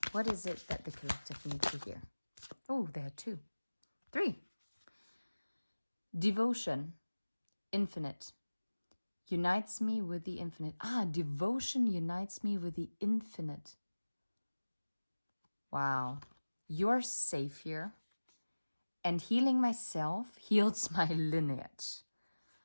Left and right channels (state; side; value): inverted; both; correlation -1.00